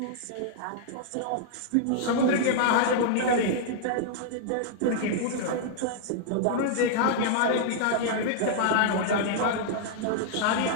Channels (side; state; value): both; different; correlation -0.01